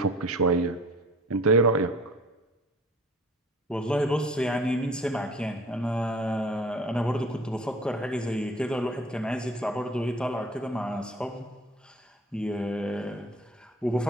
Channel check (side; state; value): both; normal; correlation 0.47